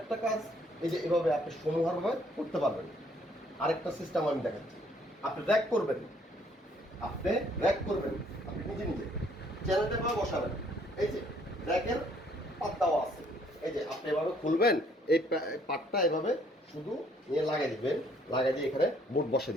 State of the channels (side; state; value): both; normal; correlation 0.64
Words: কাজ, এই যে এভাবে আপনি সমূহভাবে করতে পারবেন। আরেকটা সিস্টেম আমি দেখাচ্ছি, আপনি র্যাক করবেন, আপনি র্যাক করবেন, আপনি নিজে নিজে চ্যানেলটা এভাবে বসাবেন, এই যে র্যাকের পাত দেওয়া আছে, এই যে আপনি এভাবে খুলবেন, এই পাটটা এভাবে শুধু নিয়ে লাগাই দিবেন, লাগাই দিয়ে এখানে বোর্ড বসে